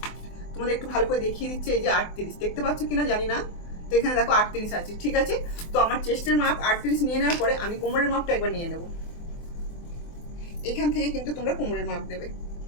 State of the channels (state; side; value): late; right; 24 ms